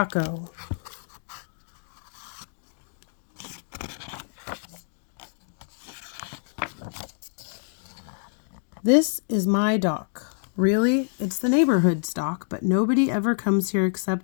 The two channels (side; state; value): right; silent; digital silence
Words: This is my dock. Really, it's the neighborhood's dock, but nobody ever comes here